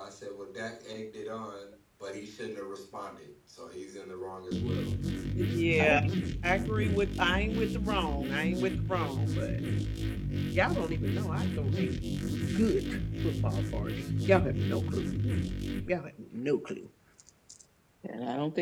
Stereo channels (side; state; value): both; identical; correlation 1.00